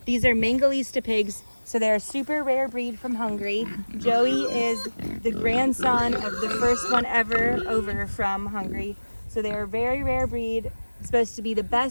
These are Mangalitsa pigs. So they're a super rare breed from Hungary. Joey is the grandson of the first one ever over from Hungary. So they're a very rare breed. Supposed to be the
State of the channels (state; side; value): inverted; both; correlation -1.00